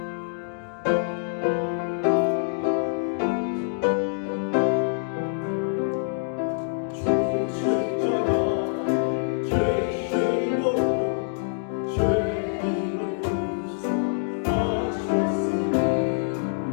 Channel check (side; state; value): right; silent; digital silence